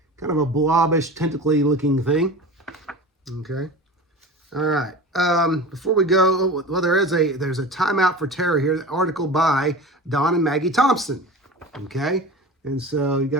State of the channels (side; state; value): both; normal; correlation 0.34